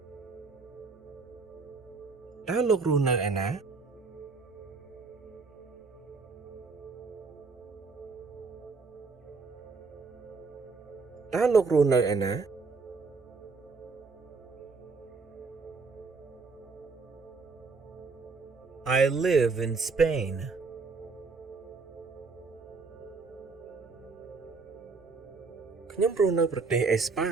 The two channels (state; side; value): quieter; left; 4.4 dB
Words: តើលោករស់នៅឯណា តើលោករស់នៅឯណា I live in Spain. ខ្ញុំរស់នៅប្រទេសអេស្ប៉ា